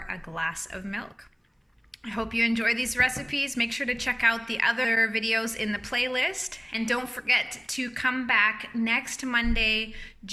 a glass of milk. I hope you enjoy these recipes. Make sure to check out the other videos in the playlist. And don't forget to come back next Monday,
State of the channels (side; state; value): both; identical; correlation 1.00